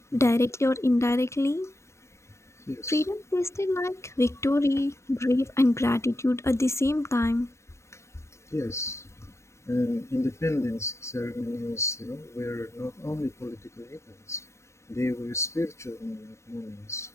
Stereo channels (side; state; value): right; late; 0.14 ms